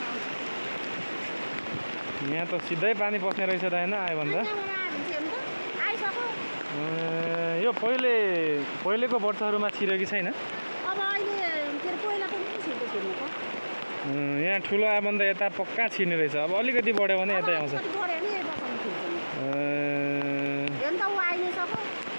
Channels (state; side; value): inverted; both; correlation -1.00